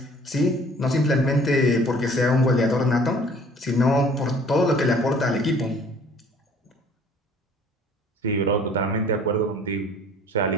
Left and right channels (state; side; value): normal; both; correlation 0.53